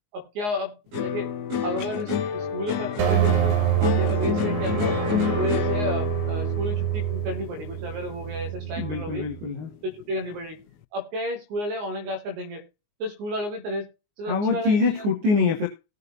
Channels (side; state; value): left; late; 19 ms